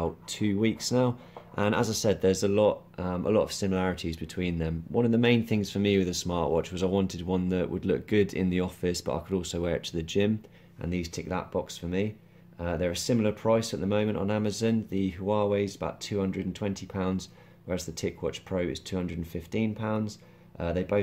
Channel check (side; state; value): both; identical; correlation 1.00